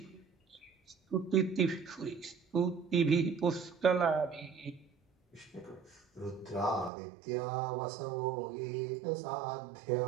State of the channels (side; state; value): left; drops out; at 6.9 s